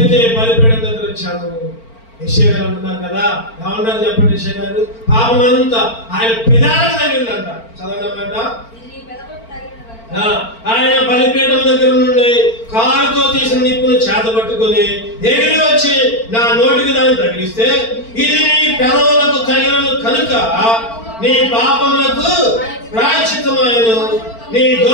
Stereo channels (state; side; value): late; right; 4.4 ms